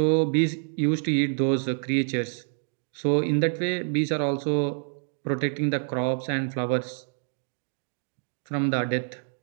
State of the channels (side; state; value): left; silent; 55 dB below the other